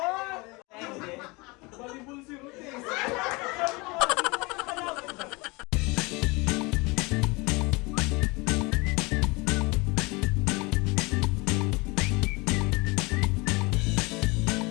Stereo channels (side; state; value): right; quieter; 25.9 dB